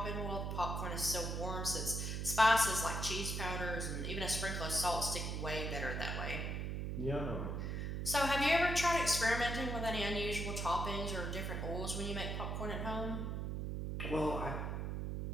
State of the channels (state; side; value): noise; right; hum, 2 dB below the sound